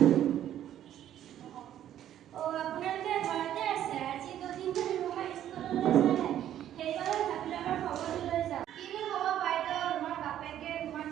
আপোনালোকে ঘৰতে আছে আজি দুদিন ধৰি ৰুমা স্কুললৈ যোৱা নাই সেইবাবে ভাবিলোঁ আমাৰ খবৰটো লৈ যাওঁ কিনো হ'ব বাইদেউ ৰুমাৰ বাপেকে ৰুমাক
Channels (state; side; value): quieter; left; 11.3 dB